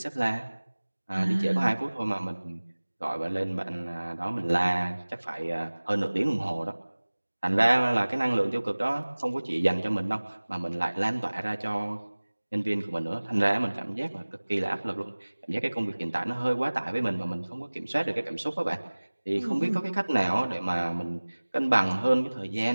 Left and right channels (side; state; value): both; inverted; correlation -1.00